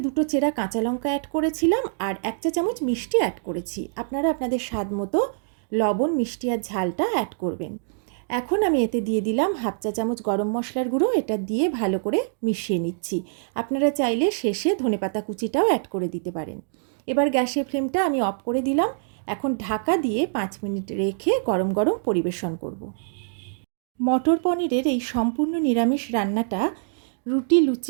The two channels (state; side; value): silent; left; digital silence